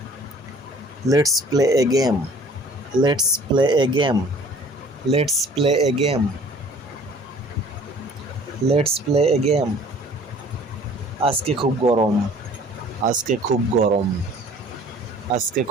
Let's play a game, let's play a game, let's play a game, let's play a game. আজকে খুব গরম, আজকে খুব গরম, আজকে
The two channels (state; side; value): normal; both; correlation 0.51